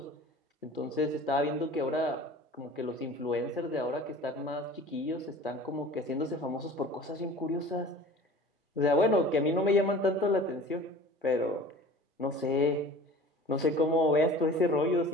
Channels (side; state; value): both; normal; correlation 0.42